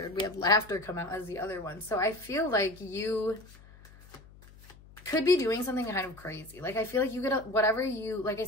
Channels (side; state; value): left; noise; hum, 22 dB below the sound